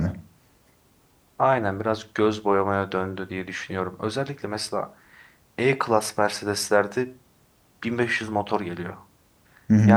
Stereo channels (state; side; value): identical; both; correlation 1.00